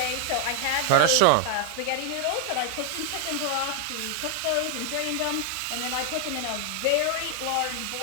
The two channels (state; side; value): different; both; correlation 0.00